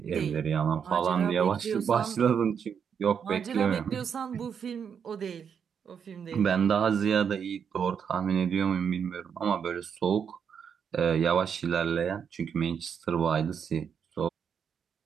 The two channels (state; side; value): quieter; left; 7.3 dB